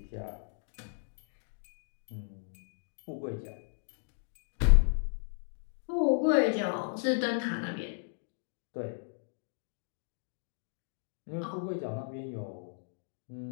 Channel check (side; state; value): right; silent; digital silence